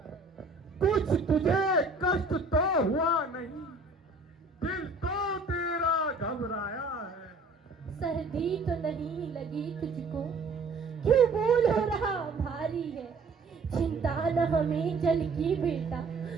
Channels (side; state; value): left; quieter; 3.6 dB